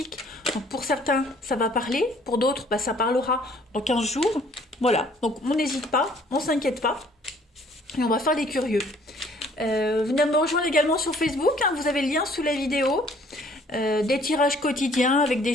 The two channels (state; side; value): normal; both; correlation 0.59